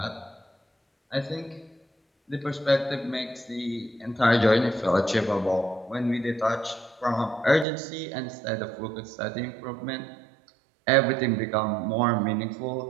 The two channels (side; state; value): left; drops out; at 7.7 s